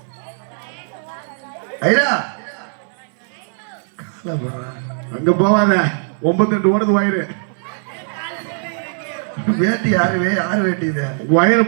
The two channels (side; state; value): left; silent; 59 dB below the other